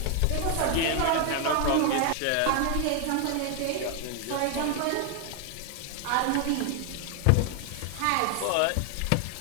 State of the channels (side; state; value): both; different; correlation 0.01